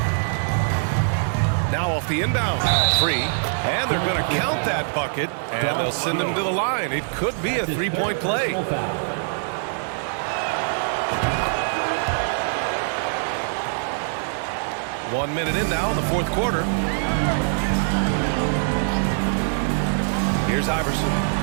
Now off the inbound. Free. And they're going to count that bucket. And they'll send him to the line. It could be a three-point play. 1 minute in now in the fourth quarter. Here's Iverson.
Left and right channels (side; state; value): left; silent; 62 dB below the other